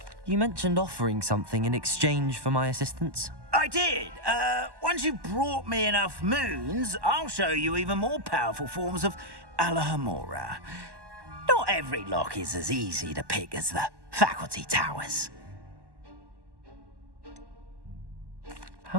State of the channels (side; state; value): left; late; 1.1 ms